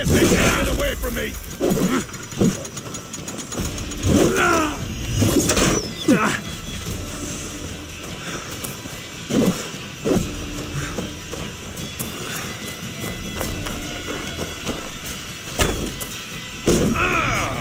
these enemies away from me!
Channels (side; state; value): both; identical; correlation 1.00